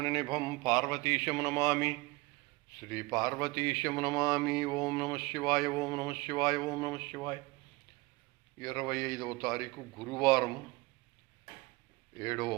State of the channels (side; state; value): left; quieter; 23.1 dB